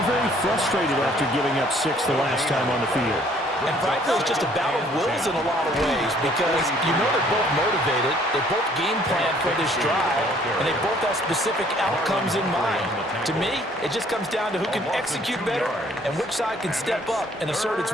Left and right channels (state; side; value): normal; both; correlation 0.60